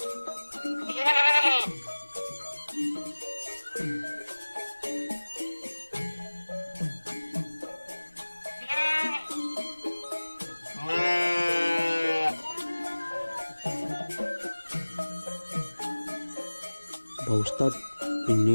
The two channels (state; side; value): inverted; both; correlation -1.00